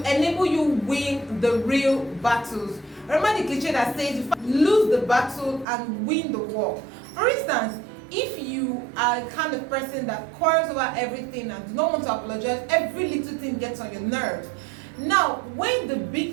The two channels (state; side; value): drops out; left; at 5.7 s